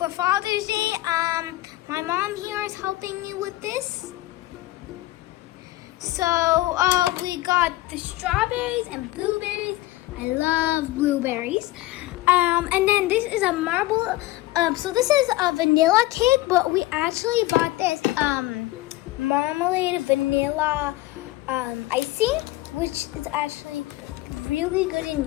Father's Day, my mom here is helping me with this. So we got the strawberries and blueberries. I love blueberries. And then this is a marble. So this is a vanilla cake, but we actually bought this marmalade vanilla icing, which is actually really good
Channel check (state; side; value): quieter; right; 17.6 dB